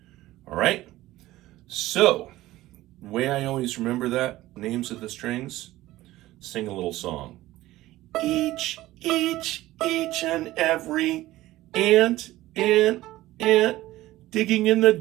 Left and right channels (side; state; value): left; quieter; 16.5 dB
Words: right? So, the way I always remember that, names of the strings, sing a little song. Each and every ant, digging in the